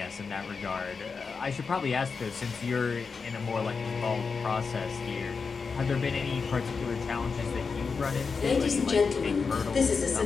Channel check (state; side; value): quieter; right; 5.1 dB